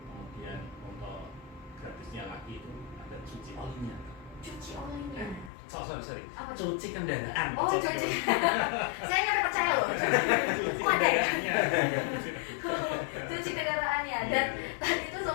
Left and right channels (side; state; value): right; drops out; at 5.5 s